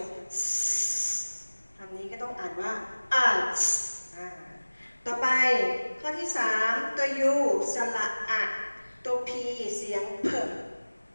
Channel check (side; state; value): both; inverted; correlation -1.00